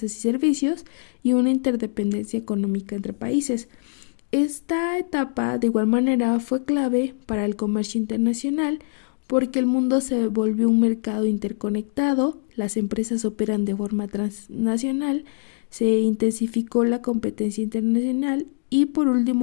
y servicios y una interdependencia económica entre países. Esta etapa, de igual manera, fue clave para el comercio internacional porque el mundo se volvió un mercado interconectado, las empresas operan de forma transnacional, se intensificó la competencia internacional y por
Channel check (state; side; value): silent; right; digital silence